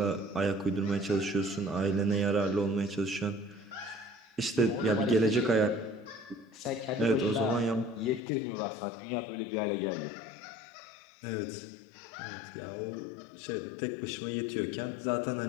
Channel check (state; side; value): drops out; right; at 8.2 s